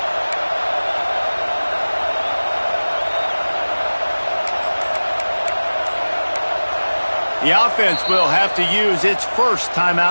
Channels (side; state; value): both; inverted; correlation -1.00